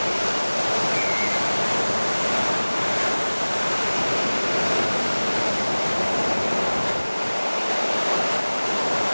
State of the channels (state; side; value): inverted; both; correlation -1.00